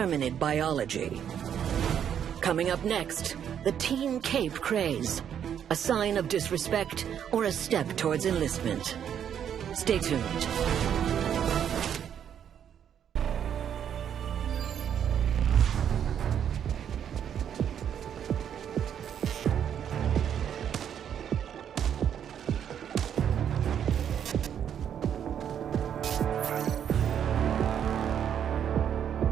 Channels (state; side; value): quieter; left; 8.9 dB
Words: biology. Coming up next, the Team Cape craze. A sign of disrespect or a step towards enlistment. Stay tuned.